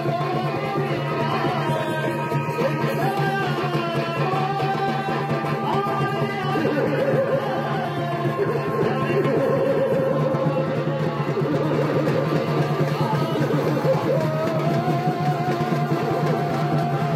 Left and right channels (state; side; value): identical; both; correlation 1.00